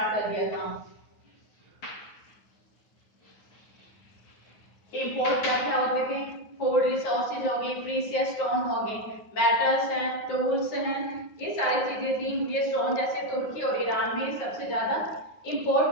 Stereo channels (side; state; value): right; late; 9.5 ms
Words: कर दिया था। इंपोर्ट क्या क्या होते थे? फूड रिसोर्सेज हो गए, प्रीशियस स्टोन हो गए, मेटल्स हैं, टूल्स हैं, ये सारी चीजें थी। ये स्टोन जैसे तुर्की और ईरान में सबसे ज्यादा इंपोर्ट